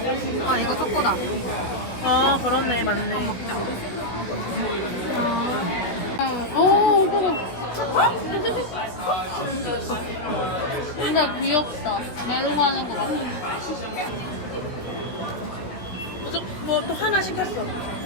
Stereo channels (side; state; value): right; late; 16 ms